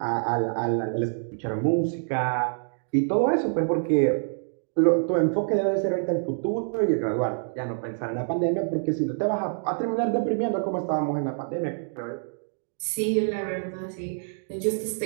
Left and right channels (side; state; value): left; silent; digital silence